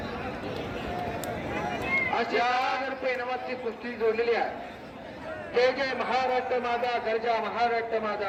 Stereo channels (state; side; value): identical; both; correlation 1.00